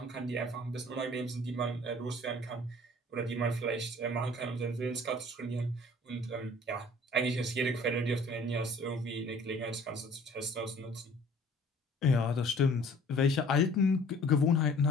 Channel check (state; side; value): normal; both; correlation 0.51